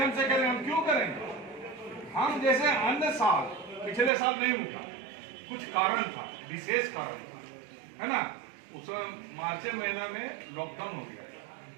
से करेंगे। हम क्यों करेंगे? हम जैसे अन्य साल, पिछले साल नहीं उठा, कुछ कारण था, विशेष कारण था, है ना। उस मार्च महीना में लॉकडाउन हो गया,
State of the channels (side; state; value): left; drops out; at 4.1 s